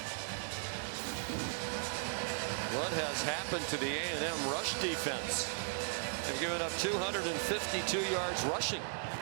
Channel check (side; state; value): left; silent; 53 dB below the other